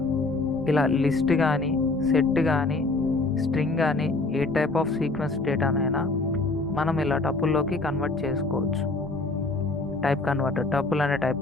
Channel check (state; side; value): quieter; right; 3.3 dB